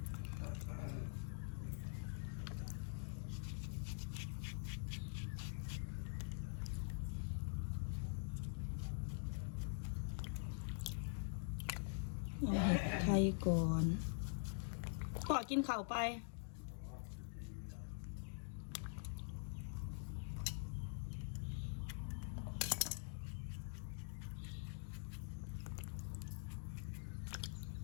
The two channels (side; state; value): right; silent; digital silence